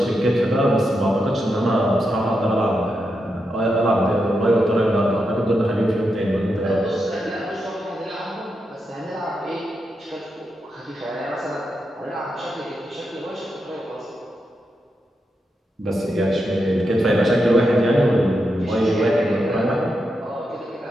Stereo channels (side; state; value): both; normal; correlation 0.85